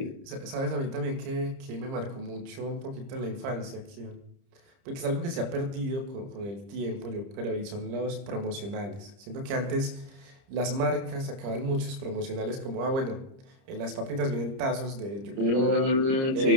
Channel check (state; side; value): late; left; 30 ms